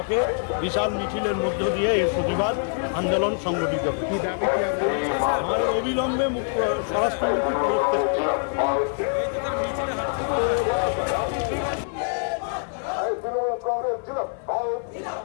বিশাল মিছিলের মধ্য দিয়ে এই প্রতিবাদ আন্দোলন সংগঠিত হবে। আমাদের অবিলম্বে স্বরাষ্ট্রমন্ত্রী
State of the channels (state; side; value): silent; right; 58 dB below the other